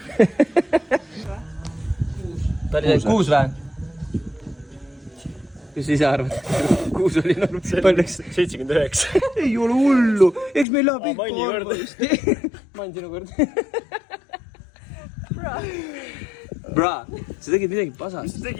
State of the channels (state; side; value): drops out; right; at 10.7 s